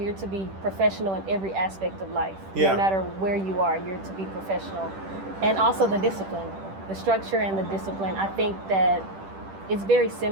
to be professional in every aspect of life. No matter where you are, you're to be professional. And also the discipline, the structure and the discipline. I think that it's very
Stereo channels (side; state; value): left; late; 10 ms